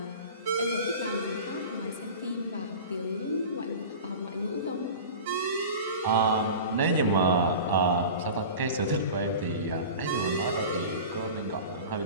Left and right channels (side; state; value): both; inverted; correlation -0.35